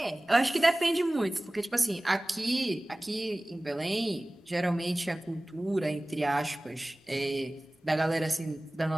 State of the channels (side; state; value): both; normal; correlation 0.98